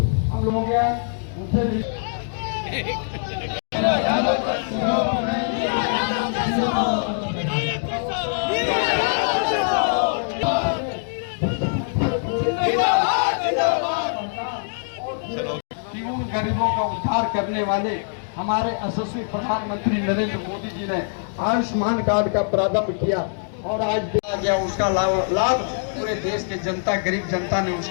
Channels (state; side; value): silent; right; digital silence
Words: हम लोगों के उनसे भी। गरीबों का उद्धार करने वाले हमारे यशस्वी प्रधानमंत्री नरेंद्र मोदी जी ने आयुष्मान कार्ड का प्रारंभ किया और आज दिया गया उसका लाभ पूरे देश के जनता, गरीब जनता ने